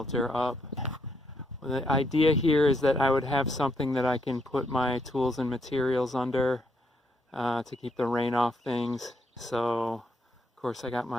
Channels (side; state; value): both; normal; correlation 0.75